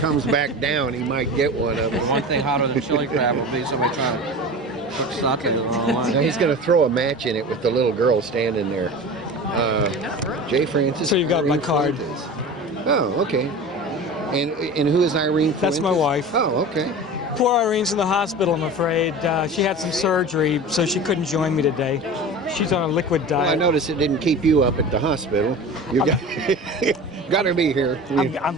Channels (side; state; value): both; normal; correlation 0.33